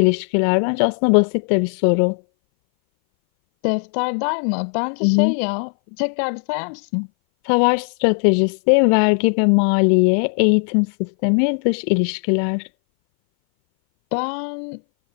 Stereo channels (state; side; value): silent; right; 60 dB below the other